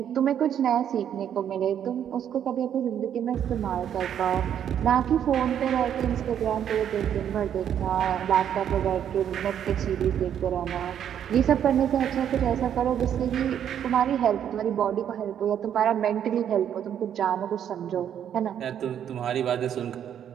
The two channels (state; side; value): quieter; left; 9.4 dB